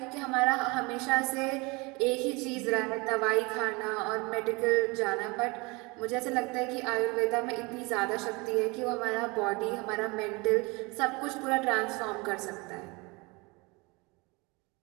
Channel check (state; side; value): quieter; left; 26.6 dB